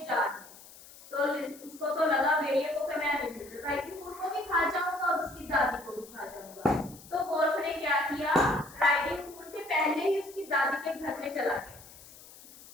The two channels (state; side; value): noise; left; hiss, 20 dB below the sound